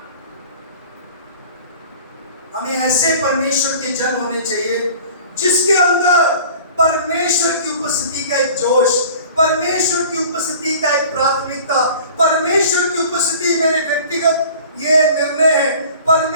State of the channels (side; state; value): both; inverted; correlation -0.45